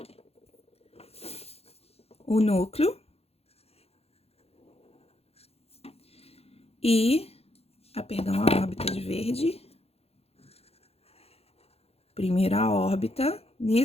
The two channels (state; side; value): late; right; 0.29 ms